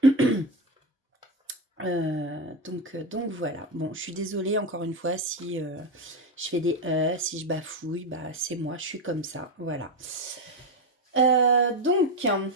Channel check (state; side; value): normal; both; correlation 0.12